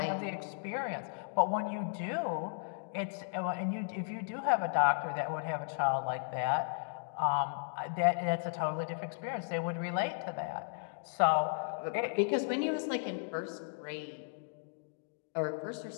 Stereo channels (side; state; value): right; silent; digital silence